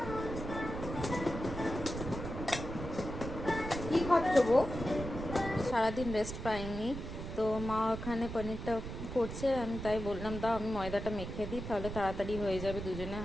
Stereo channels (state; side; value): noise; right; rumble, 7 dB below the sound